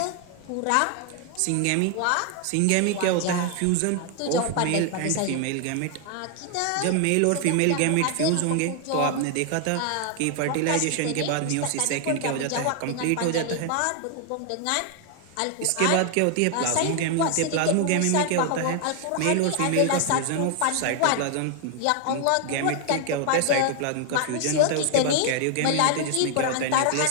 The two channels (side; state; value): both; different; correlation 0.00